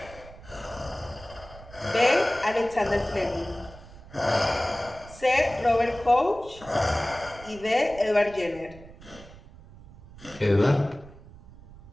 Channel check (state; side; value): noise; right; rumble, 19 dB below the sound